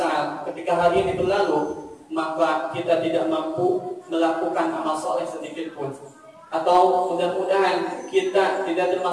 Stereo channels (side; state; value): both; identical; correlation 1.00